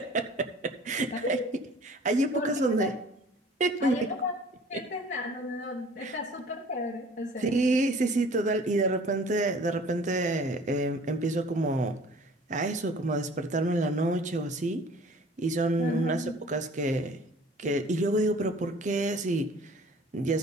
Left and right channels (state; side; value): normal; both; correlation 0.49